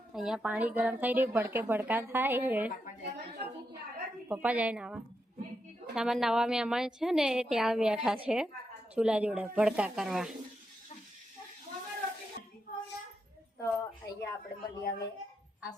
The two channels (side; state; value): both; normal; correlation 0.84